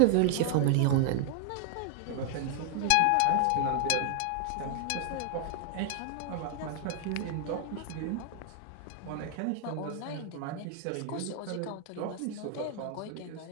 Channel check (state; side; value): different; both; correlation 0.00